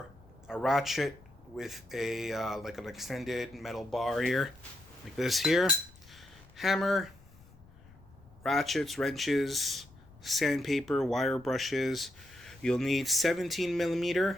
a ratchet with a like an extended metal bar here, like this here, hammer, ratchets, wrenches, sandpaper, wire brushes. You'll need 17mm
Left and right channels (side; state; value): left; noise; rumble, 24 dB below the sound